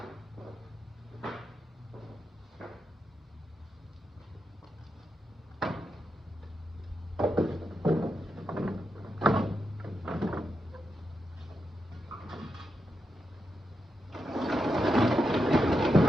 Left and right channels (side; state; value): both; normal; correlation 0.86